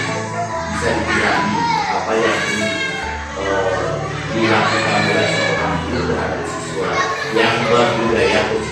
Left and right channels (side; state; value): both; identical; correlation 1.00